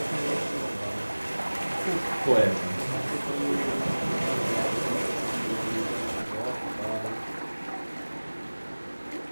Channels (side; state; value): both; inverted; correlation -1.00